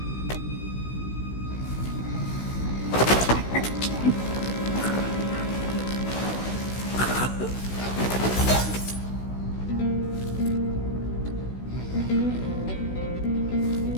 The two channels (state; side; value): late; right; 16 ms